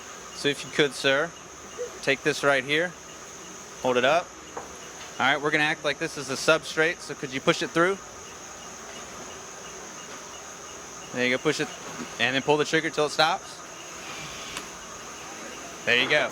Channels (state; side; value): identical; both; correlation 1.00